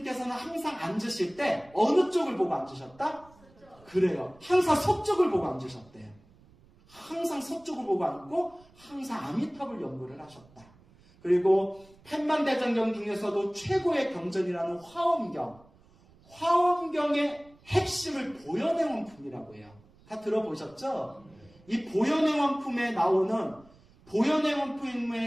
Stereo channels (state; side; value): noise; right; rumble, 28 dB below the sound